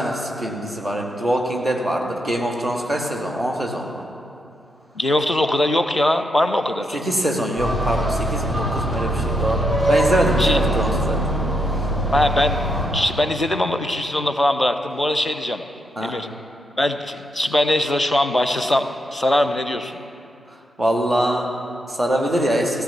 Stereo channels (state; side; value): normal; both; correlation 0.81